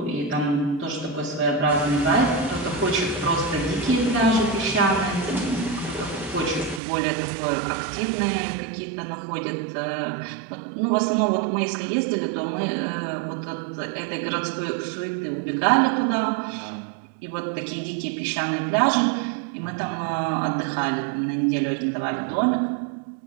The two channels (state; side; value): drops out; left; at 6.8 s